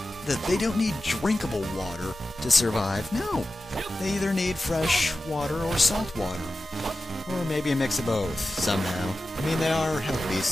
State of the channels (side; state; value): both; normal; correlation 0.94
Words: They don't need drinkable water to survive. No, they either need fresh water or salt water. Or maybe a mix of both, somehow. I mean, they are hell